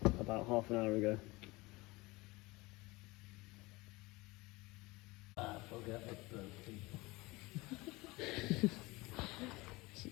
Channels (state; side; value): quieter; right; 22.5 dB